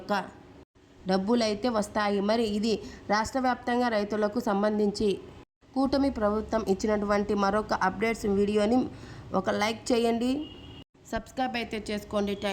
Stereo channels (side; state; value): both; identical; correlation 1.00